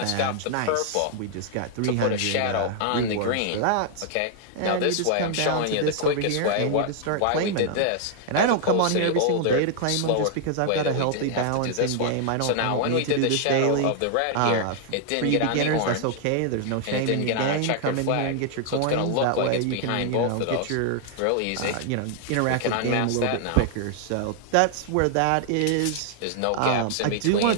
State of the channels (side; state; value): both; different; correlation 0.00